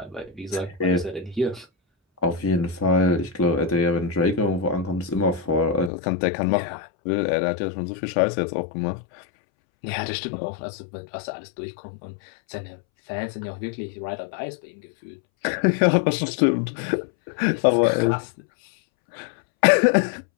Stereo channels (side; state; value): right; drops out; at 5.9 s